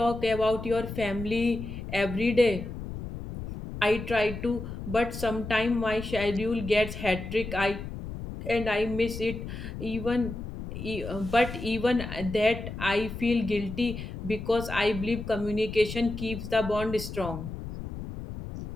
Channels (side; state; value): left; noise; rumble, 8 dB below the sound